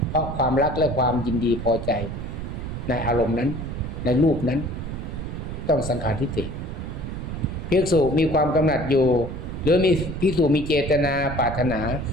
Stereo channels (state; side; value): noise; right; rumble, 6 dB below the sound